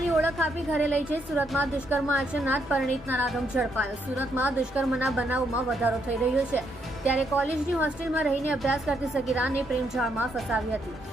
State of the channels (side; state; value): both; normal; correlation 0.75